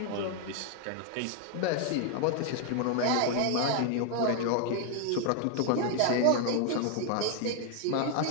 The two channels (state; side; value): different; both; correlation 0.00